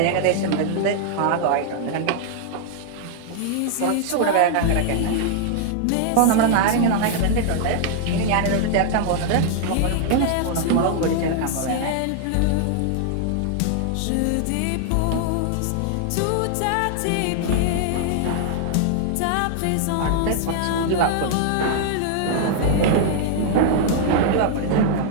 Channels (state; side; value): different; both; correlation -0.01